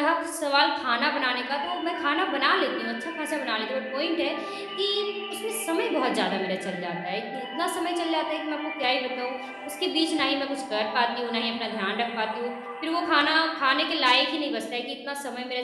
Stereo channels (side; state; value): both; identical; correlation 1.00